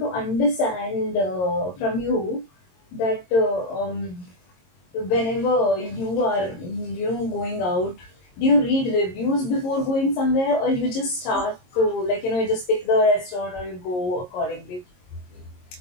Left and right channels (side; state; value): right; late; 22 ms